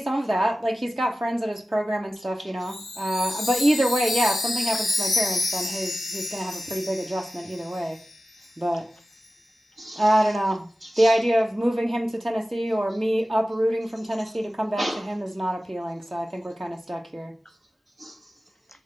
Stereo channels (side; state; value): both; normal; correlation 0.95